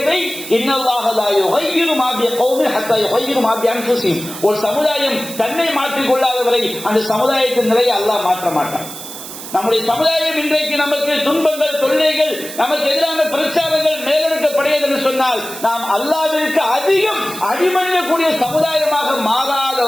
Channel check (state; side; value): noise; right; hiss, 11 dB below the sound